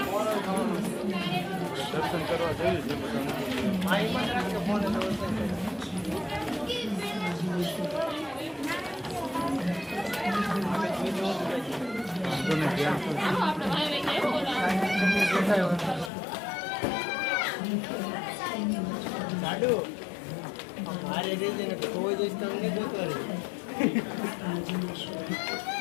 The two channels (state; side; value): drops out; right; at 16.1 s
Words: દર્શન કરવા જઈએ છીએ બધાને. મારે રેજે ને કોઈ દિવસ તમને ગોતવા રહી.